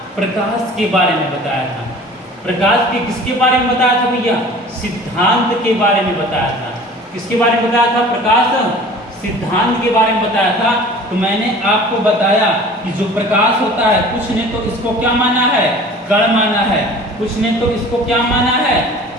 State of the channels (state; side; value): normal; both; correlation 0.44